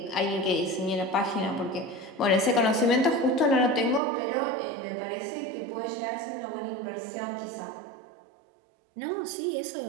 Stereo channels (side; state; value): left; drops out; at 4.0 s